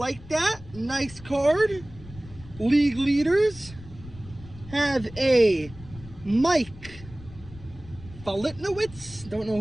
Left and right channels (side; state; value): left; noise; rumble, 17 dB below the sound